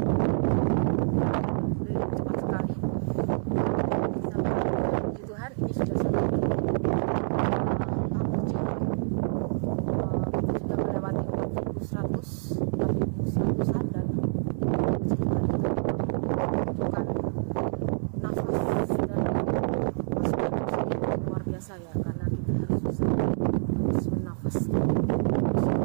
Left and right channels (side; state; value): left; silent; 60 dB below the other